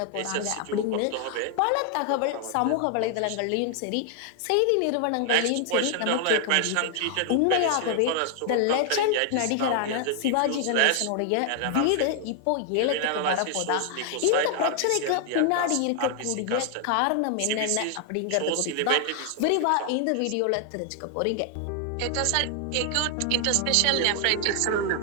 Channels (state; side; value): different; both; correlation 0.00